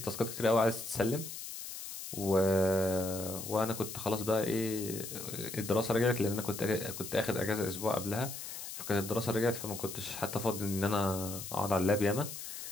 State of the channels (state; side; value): noise; left; hiss, 9 dB below the sound